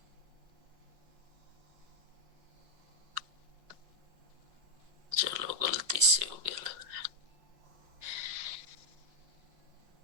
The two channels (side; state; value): left; late; 5.5 ms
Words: चलो गलती से हो गया लग रहा है।